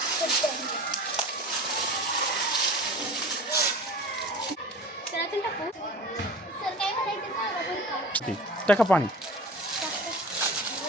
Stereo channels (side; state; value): both; normal; correlation 0.38